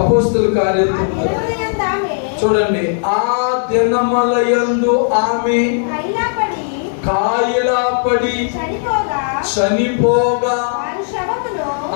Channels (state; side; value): silent; right; digital silence